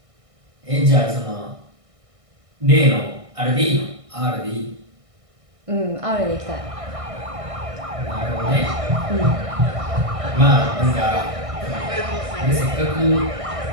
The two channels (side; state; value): left; late; 1.6 ms